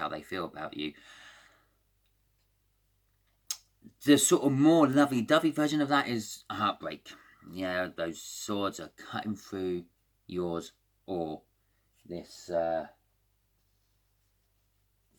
they feel about you. The sort of more lovey-dovey version of that is a heartbreak. Yeah, those swords are cutting through yours or this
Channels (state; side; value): identical; both; correlation 1.00